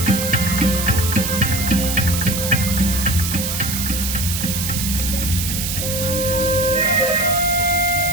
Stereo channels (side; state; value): right; noise; hiss, 3 dB below the sound